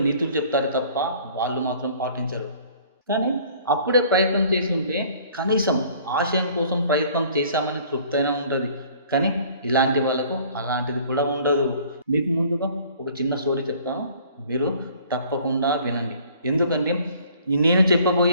నీతులు చెప్తారు తప్ప వాళ్ళు మాత్రం పాటించరు. కానీ అప్పుడే ప్రయత్నం చేసి ఉంటే కనీసం ఆశయం కోసం ప్రయత్నం చేశామని తృప్తైనా ఉంటుంది. కానీ ఇలాంటి వాళ్ళకు అలాంటిది కూడా ఉండదు. మీకు ముందుగా ఒక చిన్న స్టోరీ చెప్తాను, మీరు తప్పకుండా వినండి. ఎందుకంటే నేను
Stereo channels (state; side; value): inverted; both; correlation -0.54